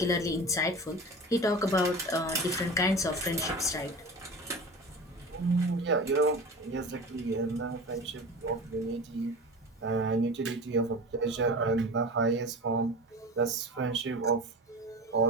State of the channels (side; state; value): both; normal; correlation 0.32